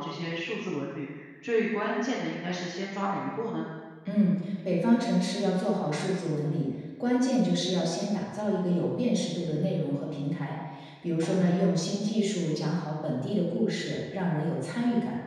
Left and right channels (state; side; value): identical; both; correlation 1.00